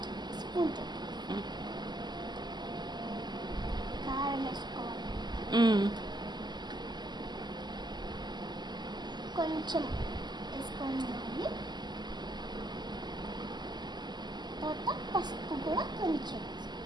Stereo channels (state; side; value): late; left; 0.21 ms